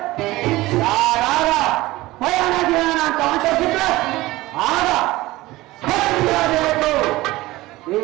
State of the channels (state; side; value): quieter; left; 18.7 dB